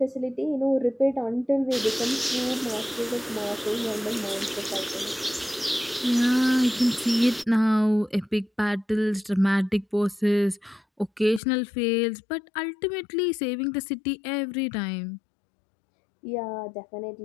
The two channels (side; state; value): right; drops out; at 11.4 s